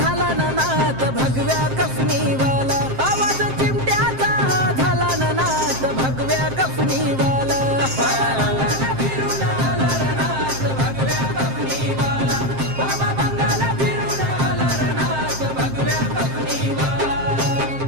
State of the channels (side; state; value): left; late; 7.6 ms